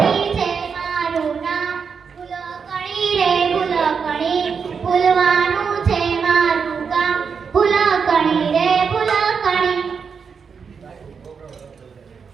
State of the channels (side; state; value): left; quieter; 6.0 dB